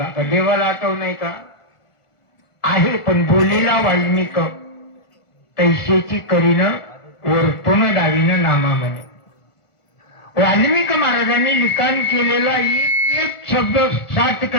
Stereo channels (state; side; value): late; right; 1.5 ms